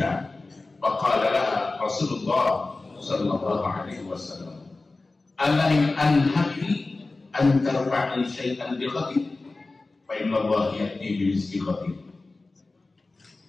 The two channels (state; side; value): quieter; right; 3.4 dB